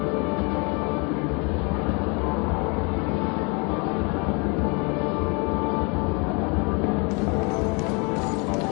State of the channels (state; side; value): quieter; right; 31.7 dB